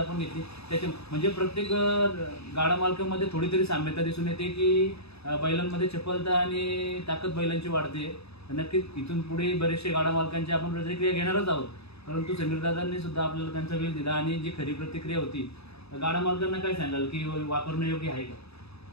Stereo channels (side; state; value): right; late; 0.79 ms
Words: घेतली. त्याच्या म्हणजे प्रत्येक गाडा मालकामध्ये थोडी तरी साम्यता दिसून येते की बैलांमध्ये चपलता आणि ताकद बैलांची वाढते. नक्कीच इथून पुढे बरेचसे गाडा मालकांची आपण प्रतिक्रिया घेणारच आहोत, परंतु समीर दादांनी सुद्धा आपल्याला त्यांचा वेळ दिला आणि जी खरी प्रतिक्रिया होती गाडा मालकांना काय सांगाल की वापरणं योग्य आहे का?